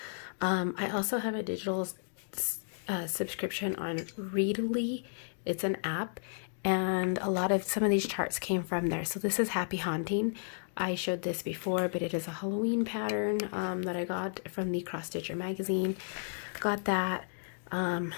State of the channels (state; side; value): silent; right; digital silence